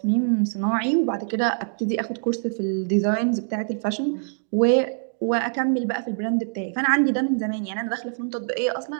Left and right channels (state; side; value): silent; left; digital silence